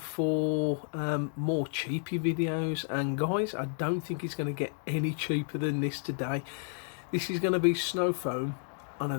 more cheapy videos, and guys, I don't think it's going to get any cheaper than this today. This is going to be snow foam on a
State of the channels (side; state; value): right; silent; 57 dB below the other